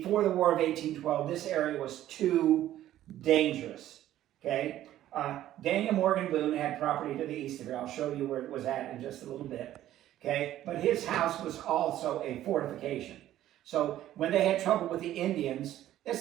the War of 1812, this area was too dangerous. Okay. Daniel Morgan Boone had property to the east of here. I'll show you where it was at in just a little bit. Okay. But his house was also a fortification. So when they had trouble with the Indians,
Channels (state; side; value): quieter; left; 13.0 dB